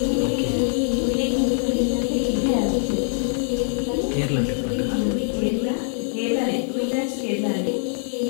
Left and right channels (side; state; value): right; silent; 63 dB below the other